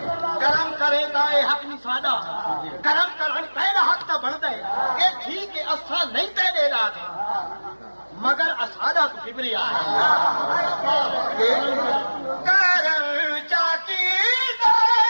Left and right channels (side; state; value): both; inverted; correlation -1.00